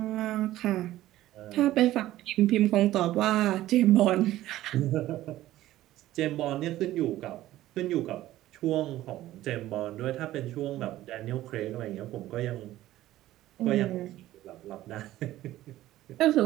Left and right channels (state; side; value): quieter; left; 14.9 dB